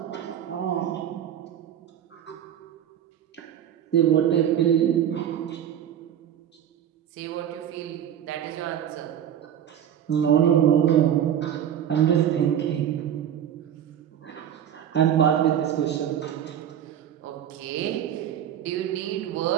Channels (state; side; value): quieter; left; 9.9 dB